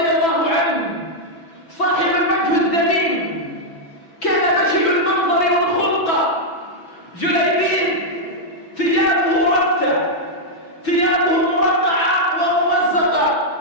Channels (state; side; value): late; right; 6.0 ms